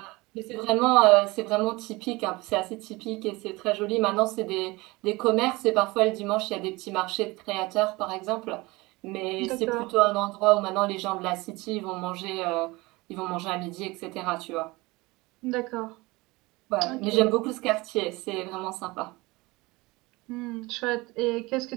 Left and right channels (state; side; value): quieter; left; 22.5 dB